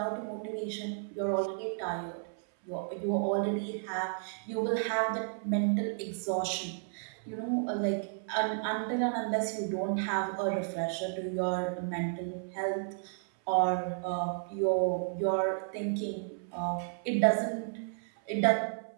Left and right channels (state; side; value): silent; left; 56 dB below the other